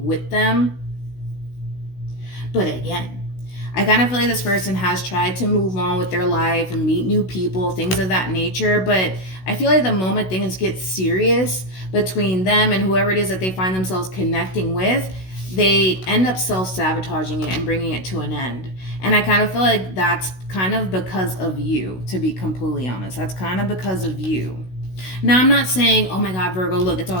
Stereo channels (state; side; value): late; right; 16 ms